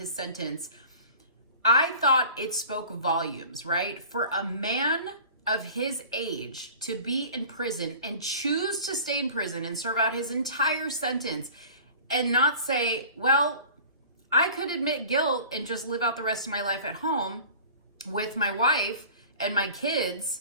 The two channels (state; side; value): inverted; both; correlation -0.42